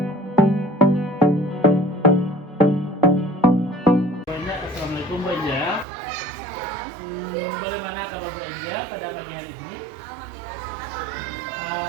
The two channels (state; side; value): drops out; left; at 5.9 s